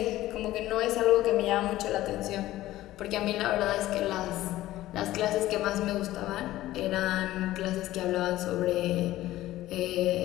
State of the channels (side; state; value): right; quieter; 15.5 dB